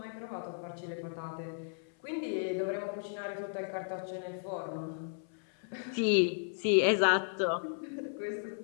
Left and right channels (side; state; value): right; silent; 55 dB below the other